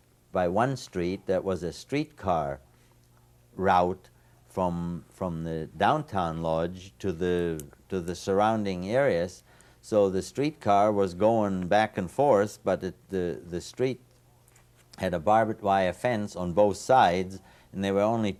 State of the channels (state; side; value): identical; both; correlation 1.00